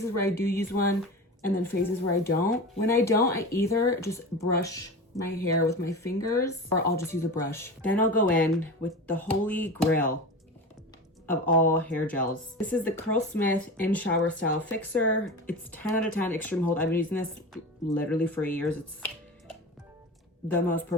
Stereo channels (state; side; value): normal; both; correlation 0.29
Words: where I do use one and then phases where I don't. When I don't, I either just brush my hair with my fingers or I'll just use a brush. Then I'll go in with the holy grail of all hair gels. This is the Curlsmith In Shower Style Fixer. It's 10 out of 10 extreme hold. I've been using this literally for years. It's the most